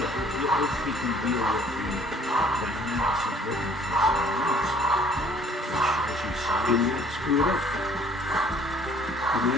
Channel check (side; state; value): both; normal; correlation 0.56